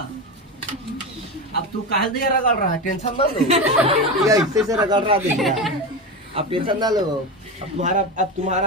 अब तू काहे दे रगड़ रहा है? टेंशन ना लो, ये ऐसे से रगड़ रहा देखिए। अब टेंशन ना लो। अब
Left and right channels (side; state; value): both; normal; correlation 0.20